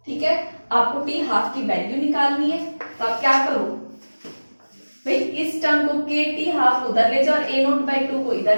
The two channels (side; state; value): both; inverted; correlation -1.00